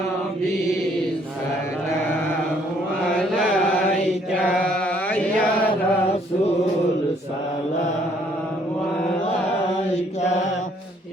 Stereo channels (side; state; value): both; normal; correlation 0.65